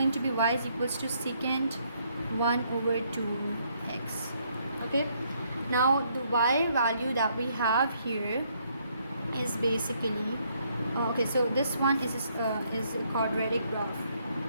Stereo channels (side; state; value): both; inverted; correlation -0.71